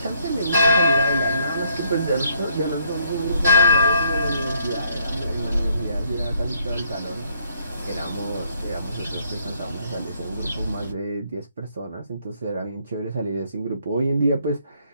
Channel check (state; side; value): inverted; both; correlation -0.68